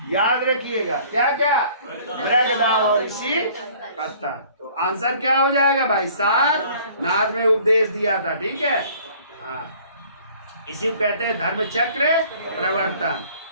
याद रखिएगा। क्या क्या? मृगदाव और ऋषि पत्तन। तो आंसर क्या हो जाएगा भाई? सारनाथ में उपदेश दिया था। ठीक है, हाँ, इसी को कहते हैं धर्म चक्र प्रवर्तन।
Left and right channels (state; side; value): inverted; both; correlation -0.54